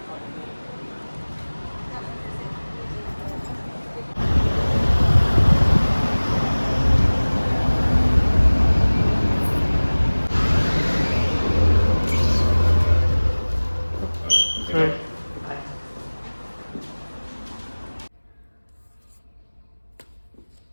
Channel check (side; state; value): both; inverted; correlation -1.00